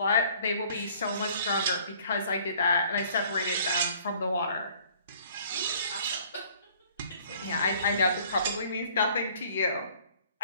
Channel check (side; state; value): both; inverted; correlation -0.56